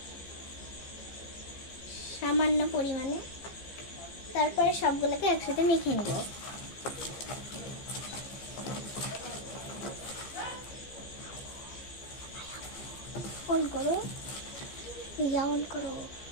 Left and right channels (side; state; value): right; late; 15 ms